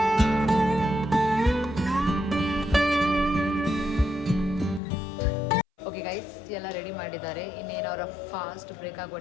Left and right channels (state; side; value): drops out; right; at 4.8 s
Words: ಗೈಸ್ ಎಲ್ಲ ರೆಡಿ ಮಾಡಿದ್ದಾರೆ. ಇನ್ನೇನು ಅವರ ಫಾಸ್ಟ್ ಬ್ರೇಕ್ ಆಗುವ